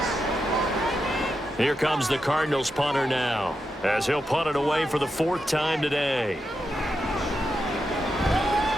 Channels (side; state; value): both; normal; correlation 0.87